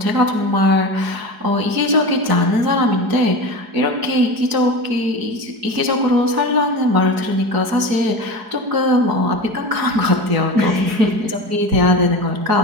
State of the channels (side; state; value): left; late; 4.7 ms